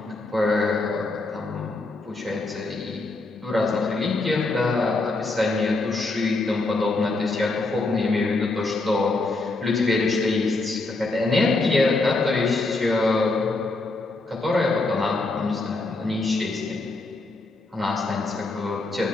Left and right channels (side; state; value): right; quieter; 3.3 dB